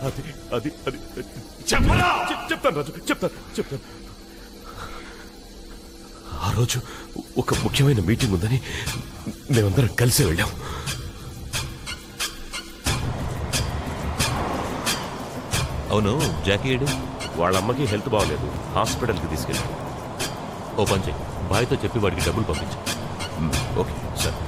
అది అది అది చెప్పరా. చెప్తాను రాజు, చెప్తాను. ఆ రోజు ఒక ముఖ్యమైన మీటింగ్ ఉందని మేమందరం కలిసి వెళ్ళాం. అవును, జాకీ ఏడు? వాళ్ళ అమ్మకి హెల్త్ బాగలేదు, హాస్పిటల్కి తీసుకెళ్ళాం. ఓ పని చెయ్యి, బాయ్తో చెప్పి వాడికి డబ్బులు పంపించు. ఓకే సార్,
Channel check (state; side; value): identical; both; correlation 1.00